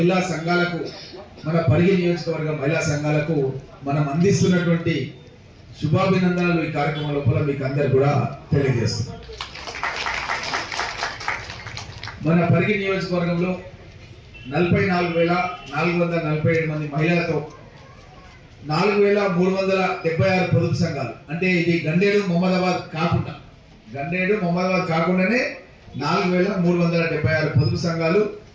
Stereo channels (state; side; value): identical; both; correlation 1.00